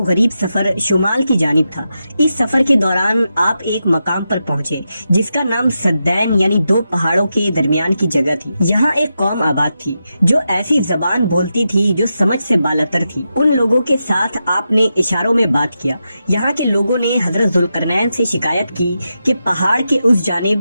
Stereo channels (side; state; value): both; inverted; correlation -0.88